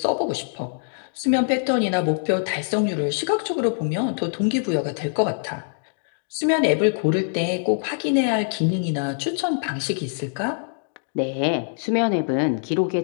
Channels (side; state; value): right; silent; digital silence